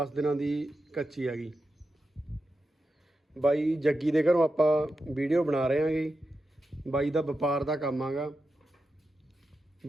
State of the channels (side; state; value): both; normal; correlation 0.89